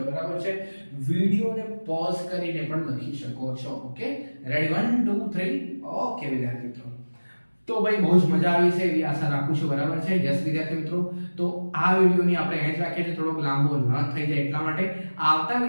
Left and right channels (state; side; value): inverted; both; correlation -1.00